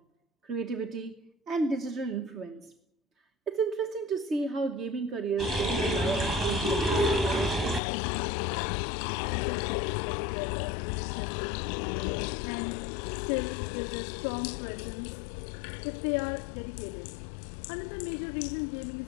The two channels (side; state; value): right; drops out; at 7.8 s